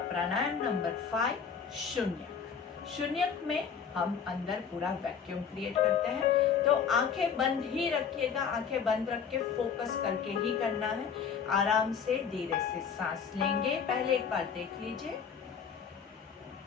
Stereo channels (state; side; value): quieter; right; 6.8 dB